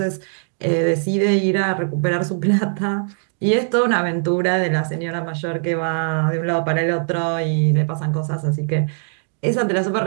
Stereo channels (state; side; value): silent; left; digital silence